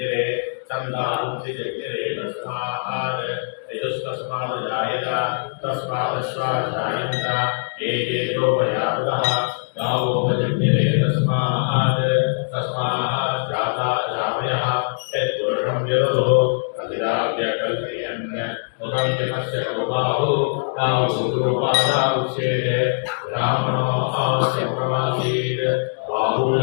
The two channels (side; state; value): right; silent; digital silence